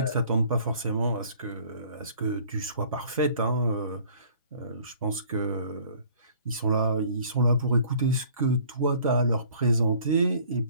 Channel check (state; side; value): inverted; both; correlation -0.53